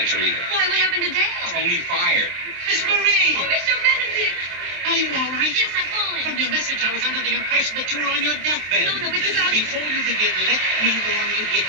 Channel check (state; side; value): late; left; 23 ms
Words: either. Why, what happened to Dale? Tony fired. Miss Marie! Oh, Mr. Benedict! Are you all right? Yes, I'm fine. From your message, I was under the impression that you were on your deathbed. No, it's about... Before you begin, let me warn you, it